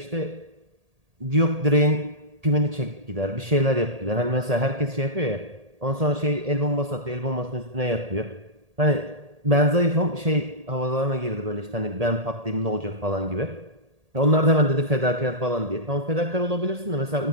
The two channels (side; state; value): left; late; 1.8 ms